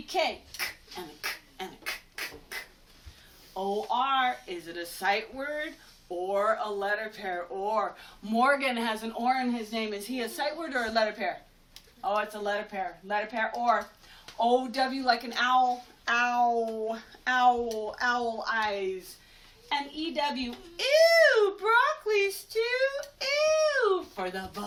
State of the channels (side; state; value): both; identical; correlation 1.00